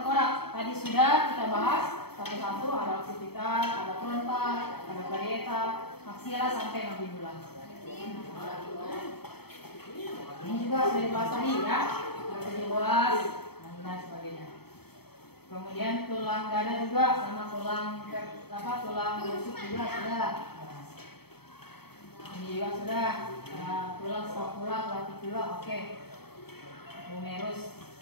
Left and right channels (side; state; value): right; late; 0.96 ms